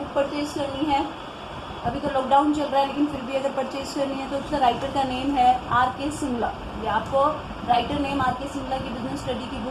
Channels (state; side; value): identical; both; correlation 1.00